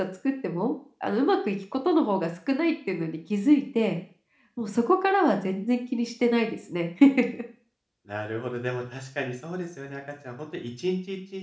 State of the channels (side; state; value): both; identical; correlation 1.00